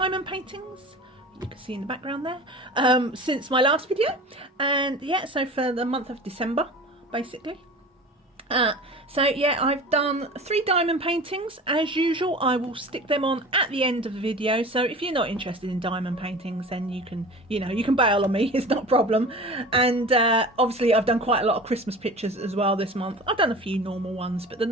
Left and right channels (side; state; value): both; normal; correlation 0.37